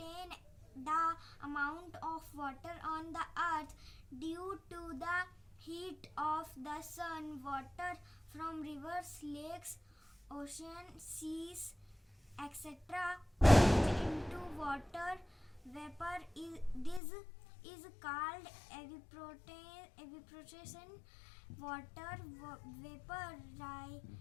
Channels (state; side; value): drops out; right; at 17.0 s